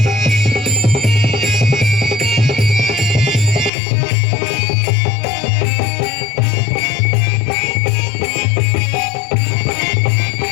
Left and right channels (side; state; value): right; drops out; at 3.7 s